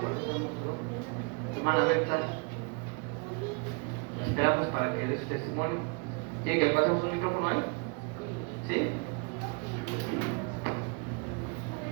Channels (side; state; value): left; quieter; 32.4 dB